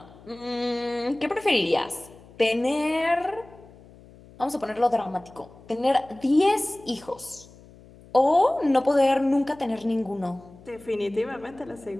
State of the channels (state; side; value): noise; left; hum, 23 dB below the sound